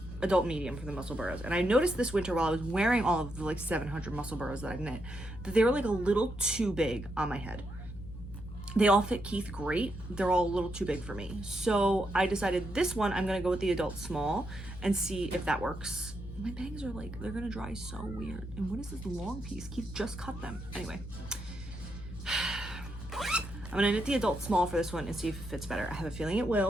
adult medium for the muscle burrows, and I noticed this winter while I was wearing all of the like 700 muscle burrows that I've knit that they were like a little too big on my head. They all fit Keith great. They're all a little too big for me. So I decided this one, I'm gonna go with the adult small and see if that works. My bangs are like, they're gonna dry so weird. And what is this long piece? Keith just cut them. Anyway. I'm gonna knit the adult small for this one and see if it fits better. I have a feeling it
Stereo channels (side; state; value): left; noise; hum, 12 dB below the sound